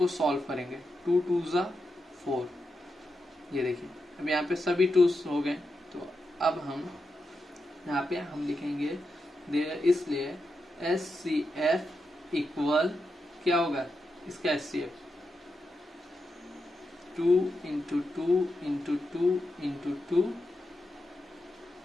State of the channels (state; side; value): normal; both; correlation 0.87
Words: सॉल्व करेंगे, 2 2 ज़ा 4। ये देखिए अब यहाँ पे सभी 2s हो गए, तो अब हम यहाँ पे हम लिखेंगे इसलिए SCF इक्वल क्या होगा इसका SCF 2 into 2 into 2 into 2